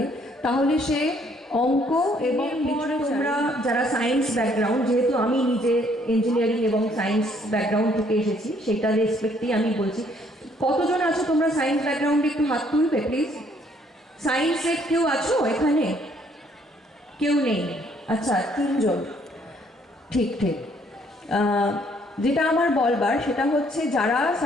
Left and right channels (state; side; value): normal; both; correlation 0.65